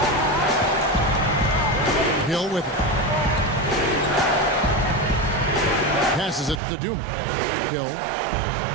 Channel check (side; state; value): left; drops out; at 6.6 s